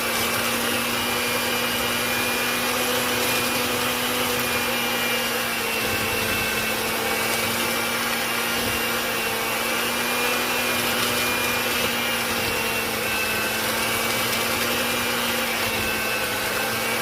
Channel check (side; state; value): both; identical; correlation 1.00